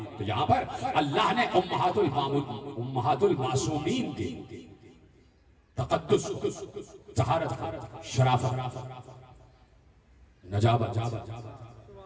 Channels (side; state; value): both; identical; correlation 1.00